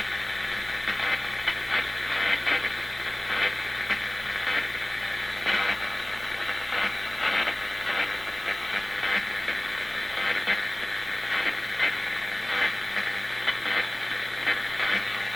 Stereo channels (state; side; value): noise; left; hum, 24 dB below the sound